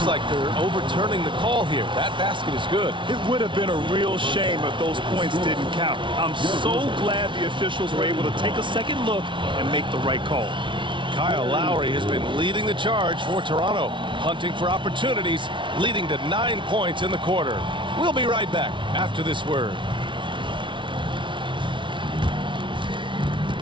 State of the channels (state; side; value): late; left; 0.24 ms